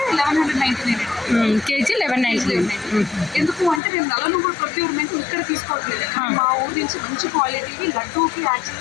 1199 కేజీ 1199. ఎందుకు అంటే మేము నల్ల నువ్వులు ప్రొక్యూర్మెంట్ ఇక్కడ తీసుకోవట్లేదు. మా ఊరి నుంచి మంచి క్వాలిటీకి లడ్డూకి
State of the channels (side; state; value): right; drops out; at 3.8 s